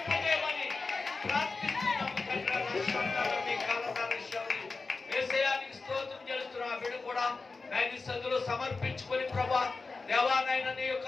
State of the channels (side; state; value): right; quieter; 4.0 dB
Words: ప్రార్థిస్తున్నాము తండ్రి. ఏసయానికి స్తోత్రం చేస్తున్నాం. ఆ బిడ్డ కూడా నాయన సదులు సమర్పించుకొని ప్రభా దేవానాయన నీ